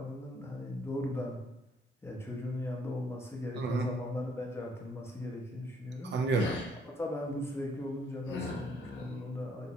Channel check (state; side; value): normal; both; correlation 0.67